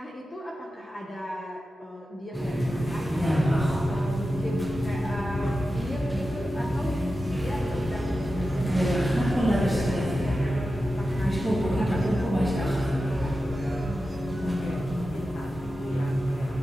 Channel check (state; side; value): normal; both; correlation 0.92